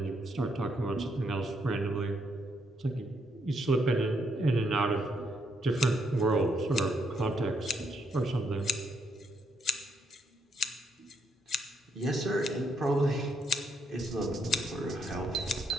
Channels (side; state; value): both; normal; correlation 0.75